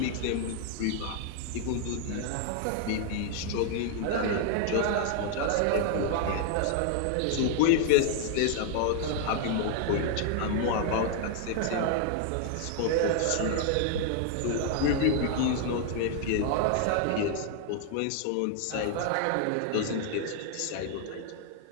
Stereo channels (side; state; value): both; different; correlation 0.00